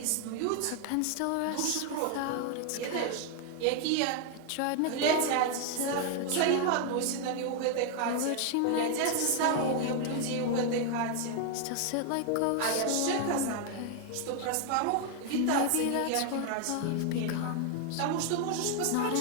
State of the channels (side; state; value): both; different; correlation 0.00